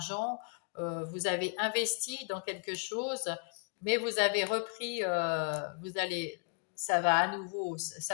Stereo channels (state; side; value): quieter; right; 39.9 dB